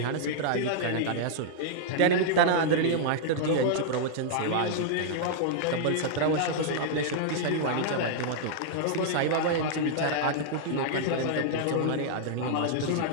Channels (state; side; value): different; both; correlation -0.01